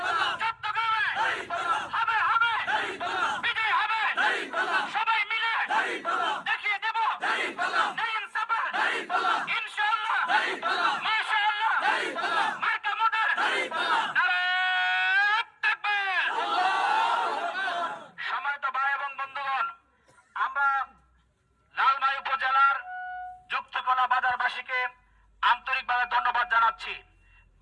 চট্টগ্রামে হবে বিজয় হবে। সবাই মিলে দেখিয়ে দেব ন্যায় ইনসাফের ইনশাআল্লাহ, মাশাআল্লাহ, মার্কা মোদের নারে তাকবীর। সম্মানিত ভাই এবং বন্ধুগণ, আমরা লালমাই উপজেলার যুক্তকলা বাজারবাসীকে আন্তরিকভাবে ধন্যবাদ জানাচ্ছি।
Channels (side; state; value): both; identical; correlation 1.00